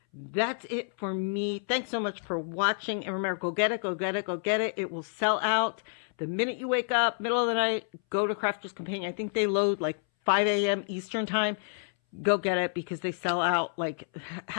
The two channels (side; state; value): right; silent; 58 dB below the other